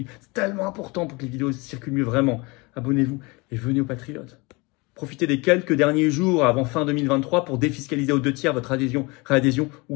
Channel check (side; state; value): right; quieter; 26.2 dB